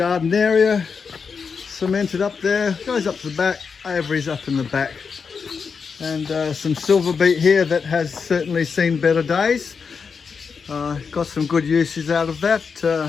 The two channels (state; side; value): quieter; right; 5.7 dB